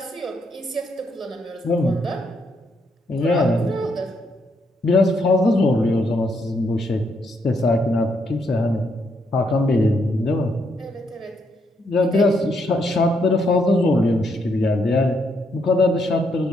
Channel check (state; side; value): normal; both; correlation 0.76